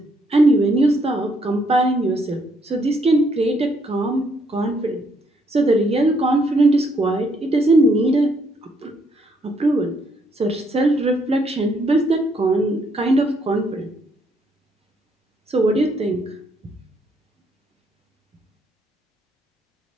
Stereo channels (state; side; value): normal; both; correlation 0.72